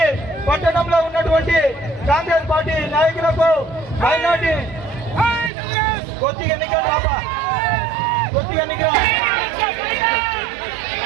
పట్టణంలో ఉన్నటువంటి కాంగ్రెస్ పార్టీ నాయకులకు మైనార్టీ కొద్దిగా ఎన్నికలు రాపా కొద్దిగా ఎన్నికల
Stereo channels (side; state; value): left; drops out; at 5.5 s